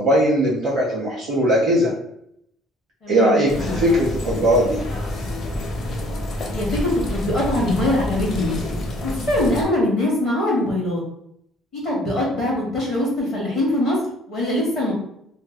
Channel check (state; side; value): normal; both; correlation 0.54